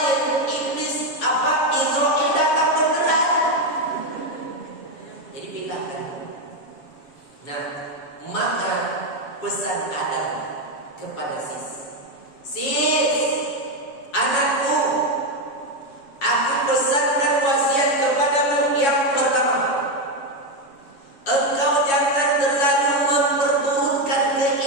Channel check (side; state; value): right; late; 7.2 ms